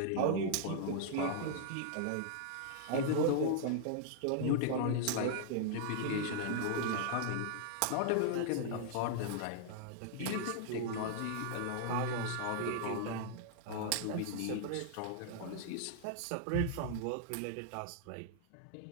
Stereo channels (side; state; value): both; different; correlation -0.01